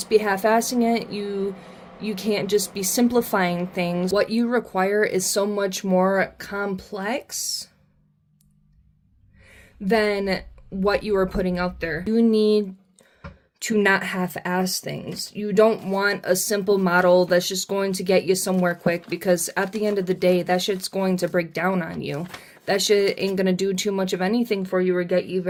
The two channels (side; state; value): both; identical; correlation 1.00